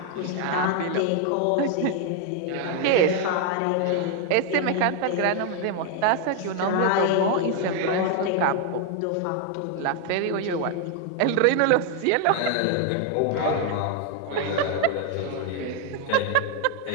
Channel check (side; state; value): both; different; correlation 0.00